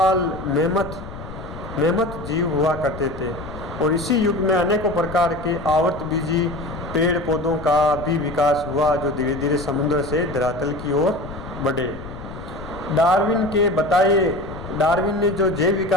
मेमथ जीव हुआ करते थे और इसी युग में अनेकों प्रकार के आवर्तबीजी पेड़ पौधों का भी विकास हुआ, जो धीरे धीरे समुद्र से धरातल की ओर बढ़े। डार्विन ने जो जैव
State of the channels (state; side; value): noise; left; rumble, 12 dB below the sound